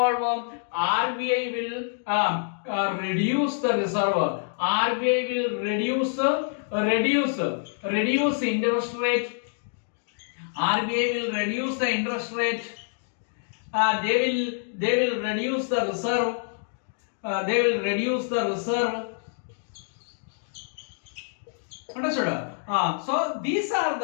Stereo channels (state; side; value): silent; right; digital silence